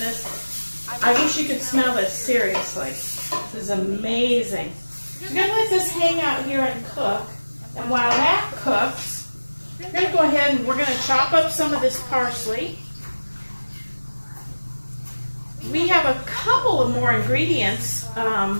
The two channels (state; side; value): inverted; both; correlation -1.00